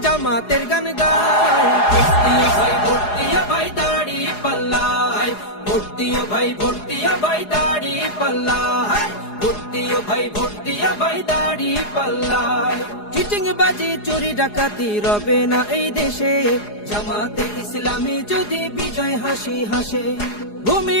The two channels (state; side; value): late; right; 4.8 ms